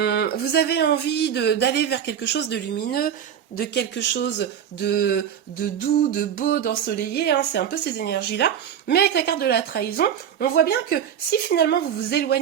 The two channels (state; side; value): quieter; left; 8.9 dB